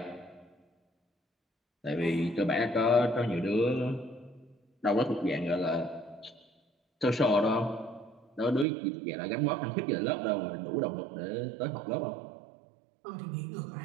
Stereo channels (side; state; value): left; drops out; at 8.7 s